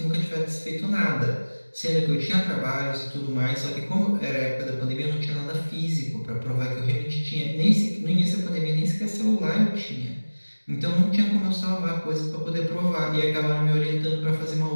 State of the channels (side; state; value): both; inverted; correlation -1.00